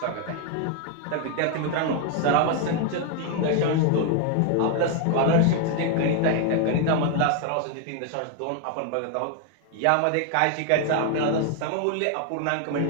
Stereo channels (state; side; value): different; both; correlation 0.00